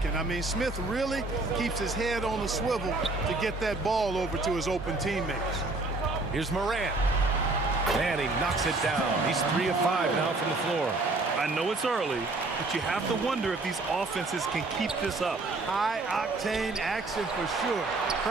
I mean, Smith really keeps his head on the swivel to get that ball over to his open teammates. Here's Morant. And he knocks it down. He's 3 of 5 now from the floor. I know it's early, but you have to wonder if these offenses can keep this up. High-octane action for sure.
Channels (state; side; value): quieter; left; 3.2 dB